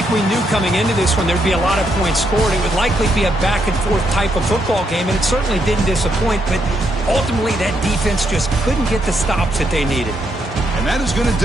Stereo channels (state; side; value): normal; both; correlation 0.77